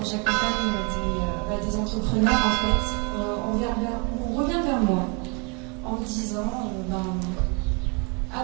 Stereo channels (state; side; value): quieter; left; 31.6 dB